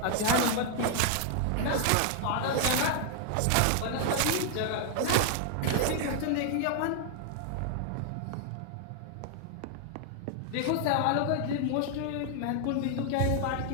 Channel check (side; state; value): both; different; correlation 0.00